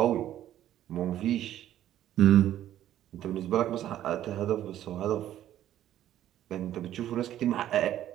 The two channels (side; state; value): left; quieter; 12.2 dB